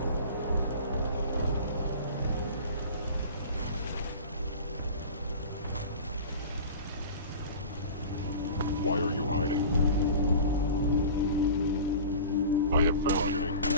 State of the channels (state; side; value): inverted; both; correlation -0.37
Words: Why are you hiding? I have found you.